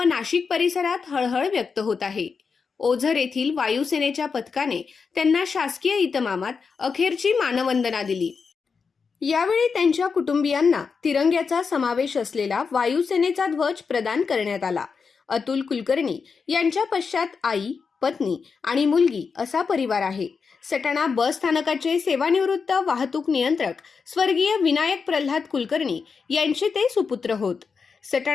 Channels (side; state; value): right; quieter; 5.4 dB